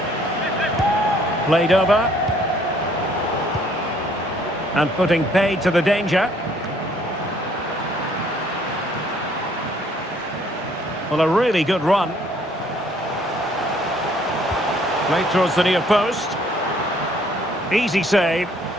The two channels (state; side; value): normal; both; correlation 0.62